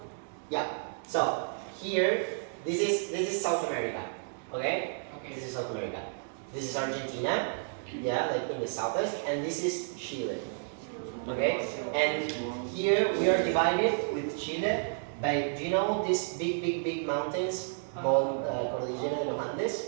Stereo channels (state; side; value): silent; left; digital silence